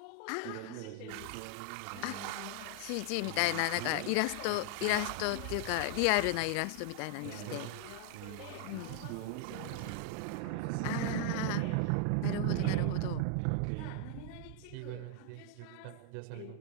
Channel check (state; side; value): different; both; correlation 0.00